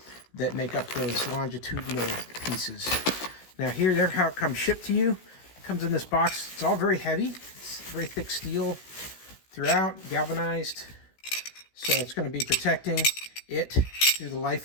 that make up those longitudinal pieces. Now here's how it comes shipped to you. It comes in this box. It's all very heavy. It's very thick steel throughout, galvanized. So it's going to be protecting it through the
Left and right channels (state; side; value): late; right; 16 ms